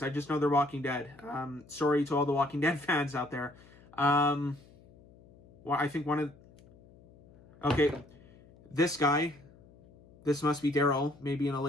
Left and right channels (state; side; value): noise; left; hum, 25 dB below the sound